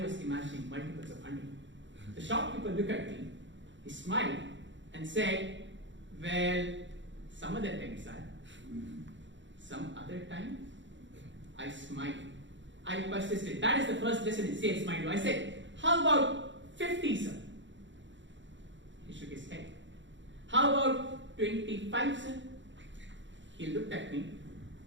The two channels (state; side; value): late; left; 0.54 ms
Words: was imagining multiples of 100. The shopkeeper looked at me, he smiled, and said, "Well, some other time, sir." Some other time? I smiled. I persisted. That is the first lesson in sales, mind you. I said, "How about 50, sir?" He shook his head. "How about 25, sir?" He looked at me,